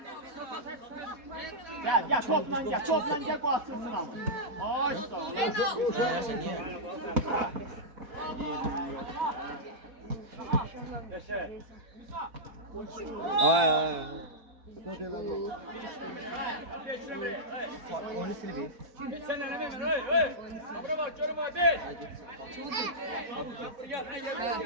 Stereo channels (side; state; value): left; late; 4.1 ms